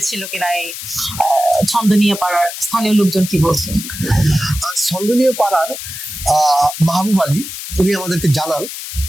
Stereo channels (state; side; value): noise; left; hiss, 9 dB below the sound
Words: কিনা? এই ছন্দনীয় পাড়ার স্থানীয় লোকজন কি বলছেন? ছন্দনীয় পাড়ার মাহবুব আলী উনি আমাদেরকে জানান